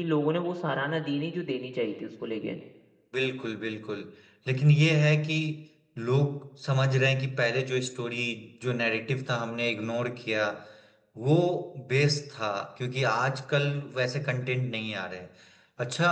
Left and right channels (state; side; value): identical; both; correlation 1.00